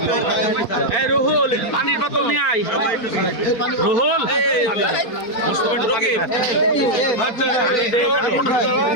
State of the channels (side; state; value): right; late; 4.4 ms